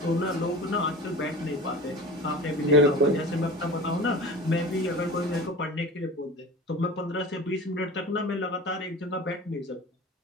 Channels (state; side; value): normal; both; correlation 0.36